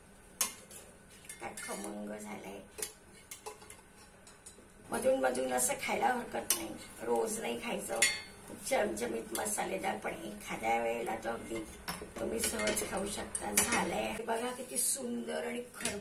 काय खमंग झालंय. मधून मधून असं खायला हरकत नाही. रोज नाही खायचं. चमचमीत मसालेदार, पण एखाद्या वेळेला तो अगदी तुम्ही सहज खाऊ शकता. झालंय बघा किती सुंदर आणि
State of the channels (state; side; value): identical; both; correlation 1.00